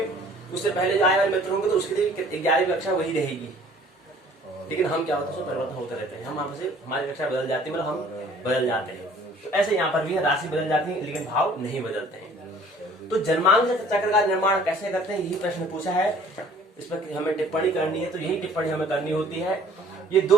उससे पहले जो आने वाले मित्र होंगे, तो उसके लिए 11वीं कक्षा वही रहेगी। लेकिन हम क्या होता है, परिवर्तन होते रहते हैं। हम हमारी कक्षा बदल जाती है, मतलब हम बदल जाते हैं। तो ऐसे यहाँ पर भी है, राशि बदल जाती है लेकिन भाव नहीं बदलते हैं। तो जन्मांक चक्र का निर्माण कैसे करते हैं, यही प्रश्न पूछा है। इस पर हमें टिप्पणी करनी है, तो यही टिप्पणी हमें करनी होती है। ये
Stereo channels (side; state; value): both; normal; correlation 0.53